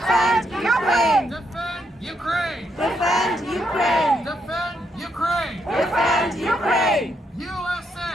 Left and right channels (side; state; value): both; normal; correlation 0.78